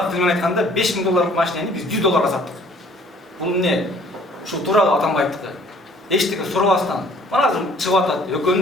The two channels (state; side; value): normal; both; correlation 0.56